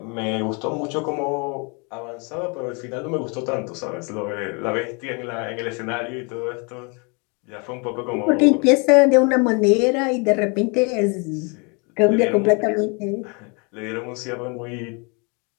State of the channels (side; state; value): right; quieter; 32.7 dB